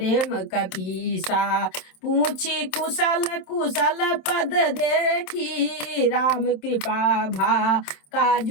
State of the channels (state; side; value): late; right; 27 ms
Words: कपीसा, पूछी कुशल कुशल पद देखी। राम कृपा भा